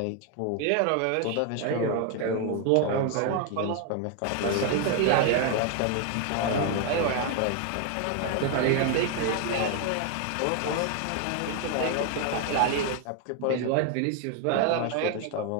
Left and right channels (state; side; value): different; both; correlation 0.01